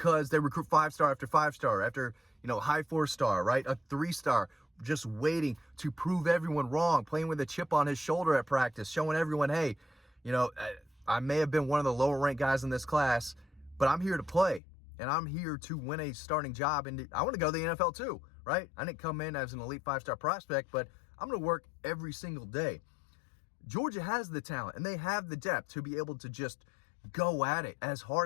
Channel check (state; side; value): drops out; right; at 14.6 s